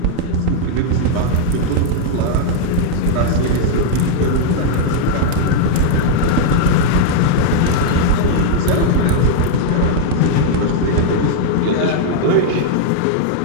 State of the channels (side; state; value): both; different; correlation 0.00